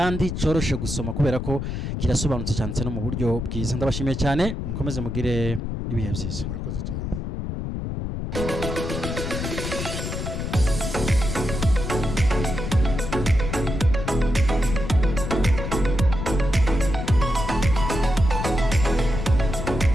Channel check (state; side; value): noise; left; rumble, 4 dB below the sound